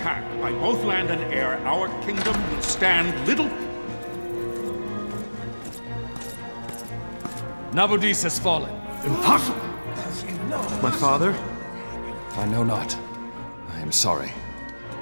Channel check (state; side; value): inverted; both; correlation -1.00